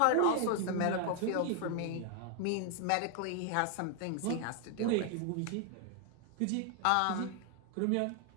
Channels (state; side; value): different; both; correlation 0.00